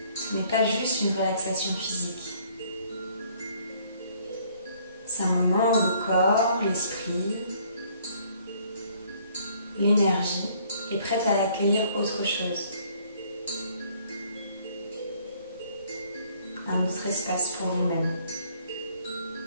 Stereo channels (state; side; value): inverted; both; correlation -0.61